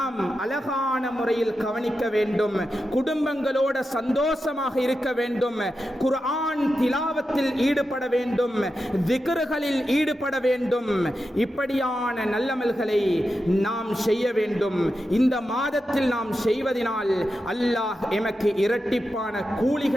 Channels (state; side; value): normal; both; correlation 0.89